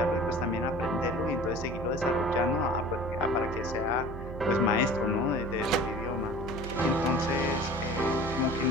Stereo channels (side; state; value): right; noise; hum, 10 dB below the sound